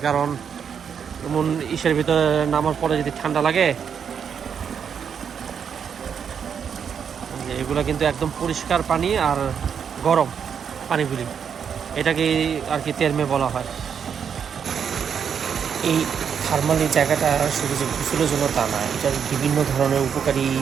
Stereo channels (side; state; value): left; quieter; 7.4 dB